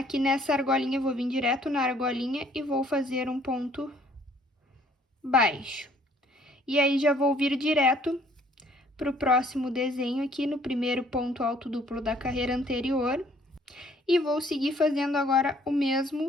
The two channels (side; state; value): both; normal; correlation 0.61